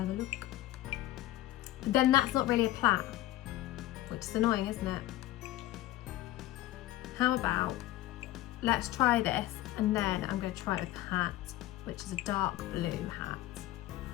a look. But then that's not really a plait, which is annoying, isn't it? How about, let's try this, and then I'm going to try it with the hat, which is a dark blue hat,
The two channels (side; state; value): right; quieter; 15.7 dB